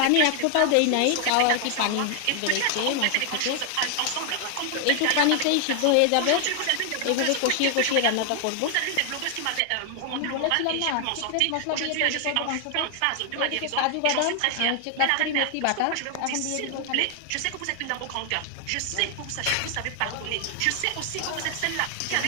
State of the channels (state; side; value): different; both; correlation 0.00